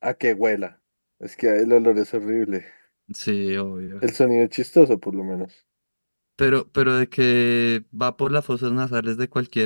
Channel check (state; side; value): inverted; both; correlation -1.00